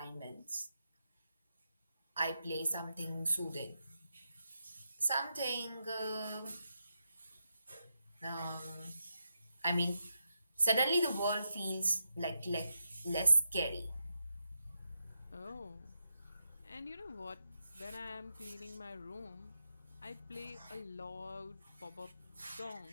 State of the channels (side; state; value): both; inverted; correlation -0.85